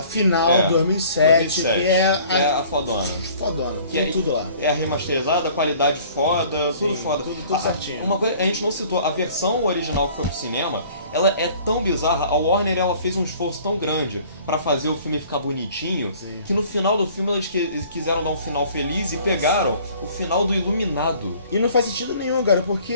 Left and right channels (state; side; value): inverted; both; correlation -0.52